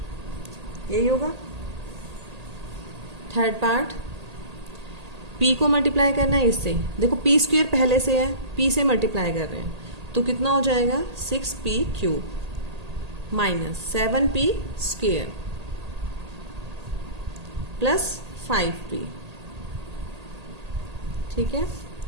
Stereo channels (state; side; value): late; left; 1.8 ms